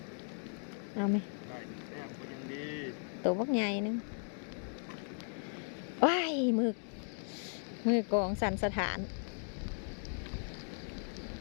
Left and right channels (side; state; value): right; silent; 53 dB below the other